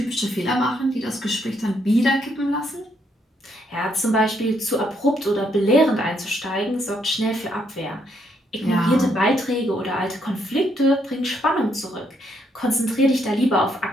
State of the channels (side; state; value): both; normal; correlation 0.73